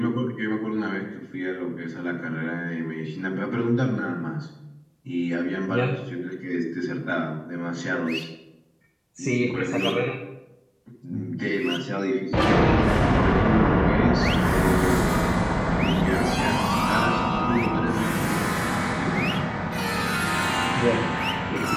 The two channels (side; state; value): both; identical; correlation 1.00